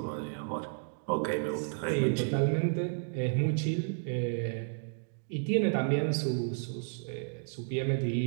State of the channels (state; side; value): silent; left; digital silence